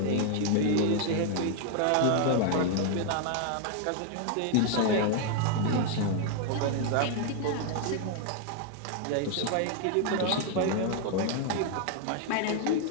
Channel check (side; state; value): both; different; correlation 0.00